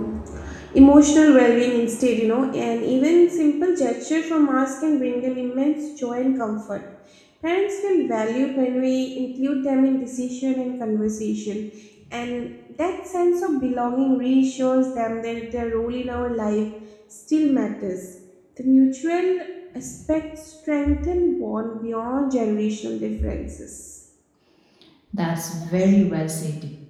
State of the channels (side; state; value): both; identical; correlation 1.00